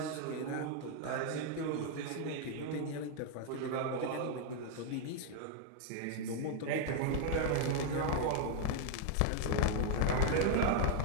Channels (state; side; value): different; both; correlation 0.00